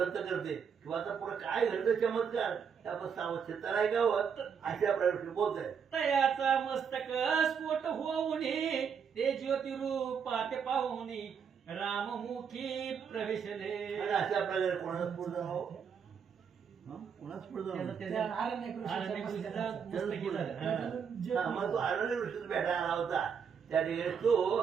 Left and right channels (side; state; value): left; quieter; 6.9 dB